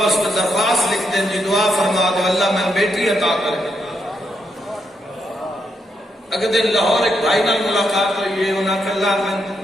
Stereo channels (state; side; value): normal; both; correlation 0.80